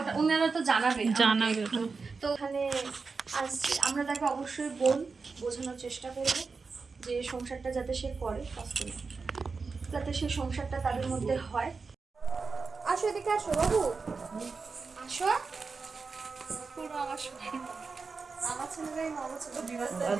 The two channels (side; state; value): left; quieter; 4.6 dB